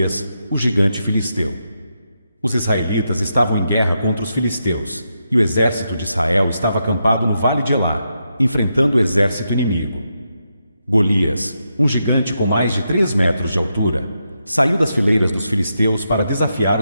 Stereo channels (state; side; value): inverted; both; correlation -0.84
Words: o gigante filisteu. Os israelitas estavam em guerra contra os filisteus, e o exército de Israel estava acampado no vale de Elá, enfrentando o exército inimigo. Golias, um gigante com mais de 3 metros de altura, saiu das fileiras dos filisteus para desafiar